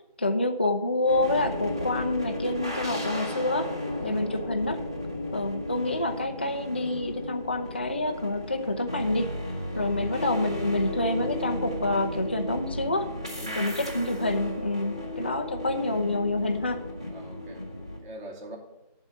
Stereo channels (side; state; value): both; inverted; correlation -0.64